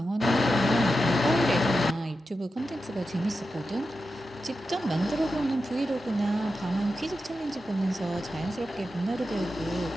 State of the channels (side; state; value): both; normal; correlation 0.90